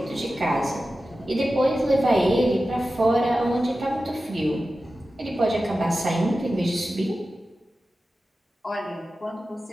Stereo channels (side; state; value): both; normal; correlation 0.94